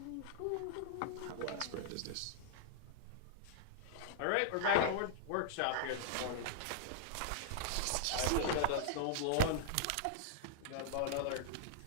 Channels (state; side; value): different; both; correlation -0.01